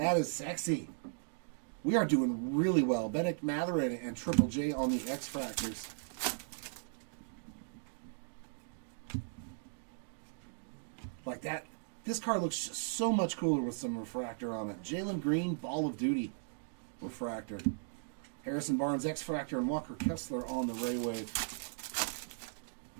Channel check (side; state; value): left; silent; digital silence